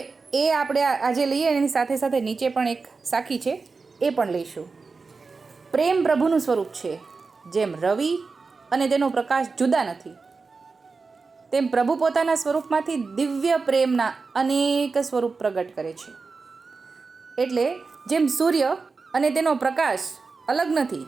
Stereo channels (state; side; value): quieter; left; 4.4 dB